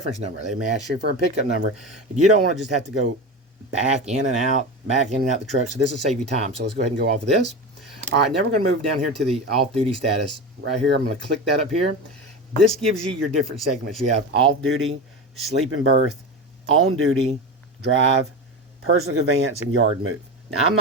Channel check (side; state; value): both; normal; correlation 0.24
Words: number. They may ask you for a pickup number. You don't want to just have to go back in and out the truck. So this will save you time. So let's go ahead and go off of this. All right, now we're going to move down here to the off-duty status. Right here, I'm going to click that up here. This gives you your different segments. You have off-duty, sleep and berth, on-duty, drive, personal conveyance, and yard move. Now, I'm